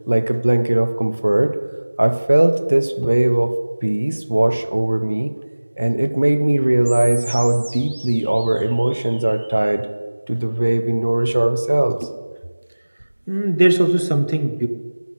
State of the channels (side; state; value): both; inverted; correlation -1.00